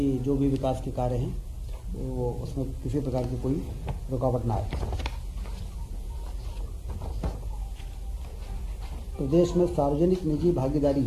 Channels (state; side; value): identical; both; correlation 1.00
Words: जो भी विकास के कार्य हैं वो उसमें किसी प्रकार की कोई रुकावट ना आए। प्रदेश में सार्वजनिक निजी भागीदारी